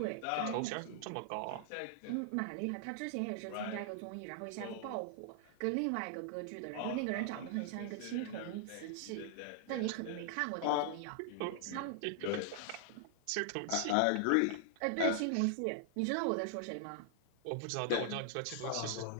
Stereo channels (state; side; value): different; both; correlation 0.00